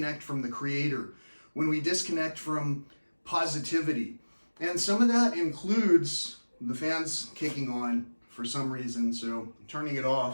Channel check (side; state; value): both; inverted; correlation -1.00